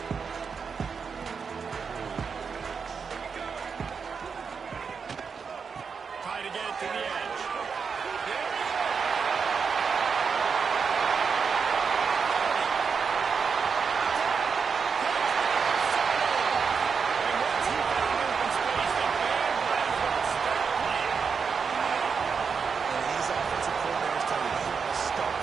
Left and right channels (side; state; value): left; quieter; 5.8 dB